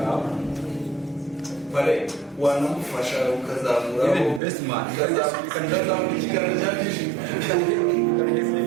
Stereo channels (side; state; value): left; drops out; at 4.4 s